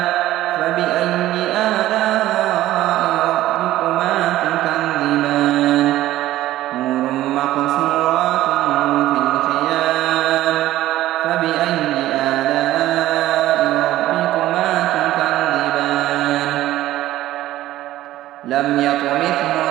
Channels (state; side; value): quieter; left; 14.8 dB